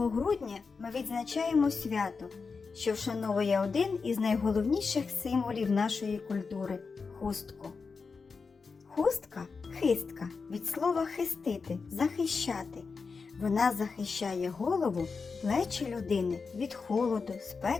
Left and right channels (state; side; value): quieter; right; 4.8 dB